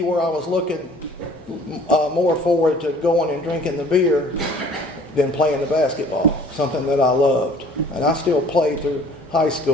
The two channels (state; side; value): normal; both; correlation 0.52